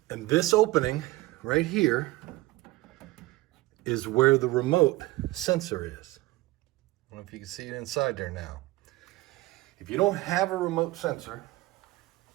And this opening right here is where the remote sensor is. I don't know if you can see it inside there now. If you don't have a remote sensor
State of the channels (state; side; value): quieter; left; 19.2 dB